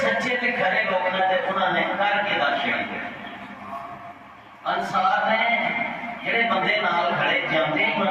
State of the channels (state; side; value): identical; both; correlation 1.00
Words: تے کھرے لوگ نے تے انہوں نے کر کے داشیا۔ انصار نے جڑے بندے نال کھڑے جاندے